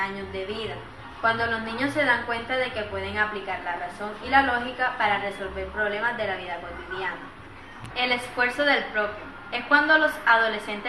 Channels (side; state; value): both; identical; correlation 1.00